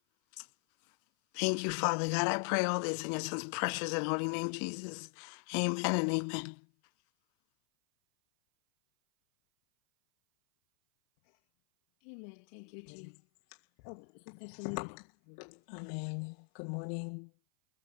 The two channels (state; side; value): silent; right; 53 dB below the other